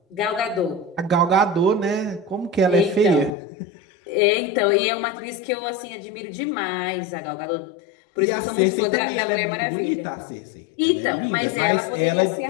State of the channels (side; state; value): right; drops out; at 3.4 s